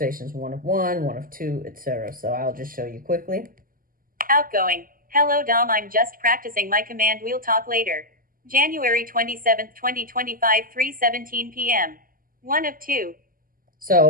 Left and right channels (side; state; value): left; late; 0.41 ms